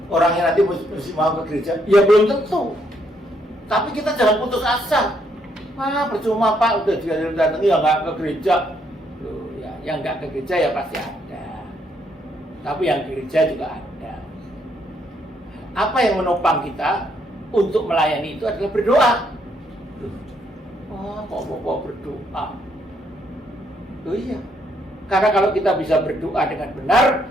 orangnya nanti mesti mau ke gereja? Ya belum tentu. Tapi kita jangan putus asa. Percuma Pak, udah datang ya nggak ke gereja. Loh, ya, yang nggak ke gereja ya pasti ada. Tapi yang ke gereja juga ada. Apa yang menopang kita untuk melayani itu adalah berdoa. Kok berdoa? Oh iya. Karena kalau kita bisa berdoa dengan benar,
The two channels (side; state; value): both; normal; correlation 0.72